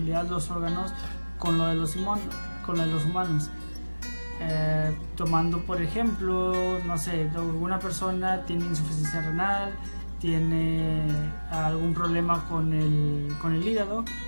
los órganos con lo de los humanos. Tomando por ejemplo, no sé, alguna persona tiene insuficiencia renal, tiene algún problema con el hígado,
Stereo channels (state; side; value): inverted; both; correlation -1.00